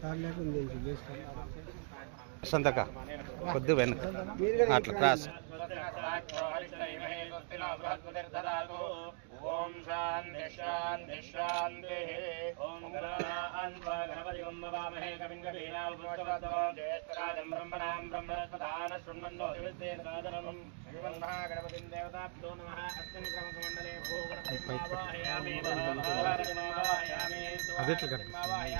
సార్ లేకుండా సంతక కొద్ది వెనక అట్లా క్రాస్ ఓం శాంతి శాంతి శాంతి ఓం గణపతి వందవామహే కవిం కవీనాం ఉపనిషద్వః జ్యేష్ఠరాజం బ్రహ్మణాం బ్రహ్మణస్పదాన శృణ్వన్నో దివ్యసేనకాదనం శ్రీమన్ మహాగణపతిం దేవతాభ్యో నమః అస్మిన్ క్రమసమండలే అదెట్లా కనిపిస్తుంది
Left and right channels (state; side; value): silent; left; 51 dB below the other